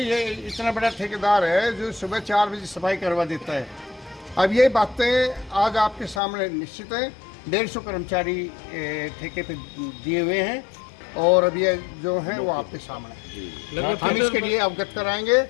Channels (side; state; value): right; drops out; at 6.2 s